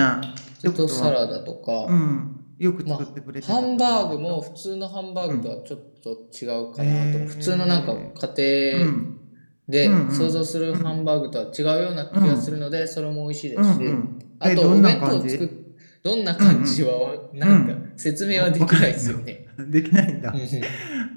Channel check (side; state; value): both; inverted; correlation -1.00